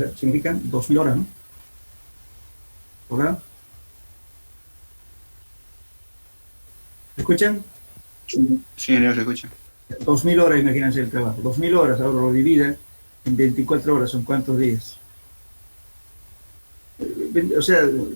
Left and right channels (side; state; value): both; inverted; correlation -1.00